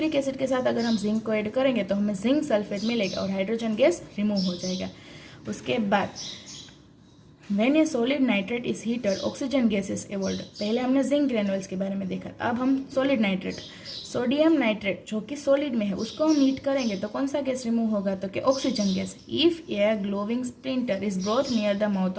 एसिड के साथ अगर हम जिंक को ऐड करेंगे तो हमें जिंक सल्फेट मिलेगा और हाइड्रोजन गैस रिमूव हो जाएगा। उसके बाद When a solid nitrate is heated, oxygen gas is evolved। पहले हमने जिंक ग्रेनुअल्स के बारे में देखा, अब हम सॉलिड नाइट्रेट, सोडियम नाइट्रेट जो कि सॉलिड में है, उसको हम हीट करेंगे तो कौन सा गैस रिमूव होगा, तो कि oxygen gas. If a glowing splinter is brought near the mouth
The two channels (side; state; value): both; identical; correlation 1.00